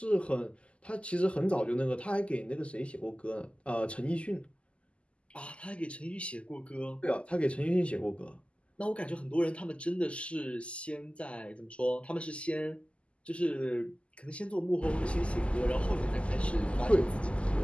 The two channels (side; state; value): right; late; 0.057 ms